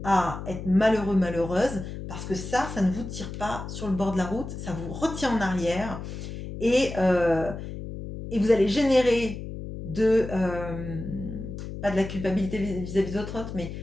à être malheureux, malheureuse, parce que ça ne vous tire pas sur le bord de la route, ça vous retient en arrière et, euh, et vous allez générer pas de la culpabilité vis-à-vis d'autres, mais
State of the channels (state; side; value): noise; left; hum, 8 dB below the sound